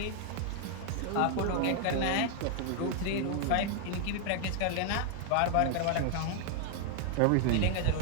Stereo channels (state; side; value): different; both; correlation 0.00